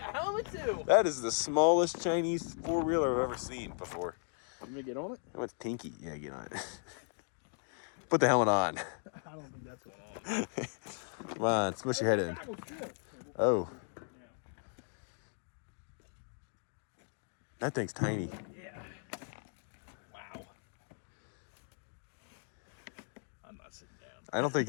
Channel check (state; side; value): silent; right; 53 dB below the other